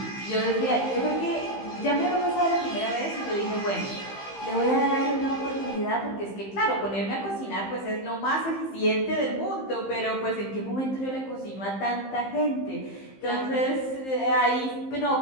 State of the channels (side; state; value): right; late; 15 ms